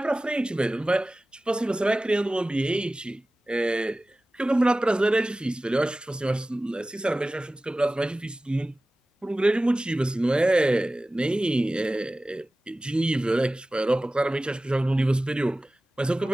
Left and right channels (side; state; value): both; normal; correlation 0.97